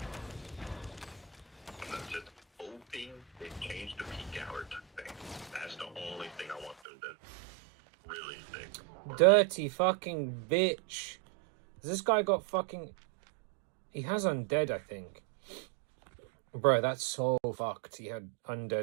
I'm just hoping they change the peak hour thing. That's the only thing I want them to really fix. Dirty fucking bitch. This guy got fucking... He has undead, I think. Bro, that's so fucked. He had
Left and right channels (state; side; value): drops out; left; at 6.8 s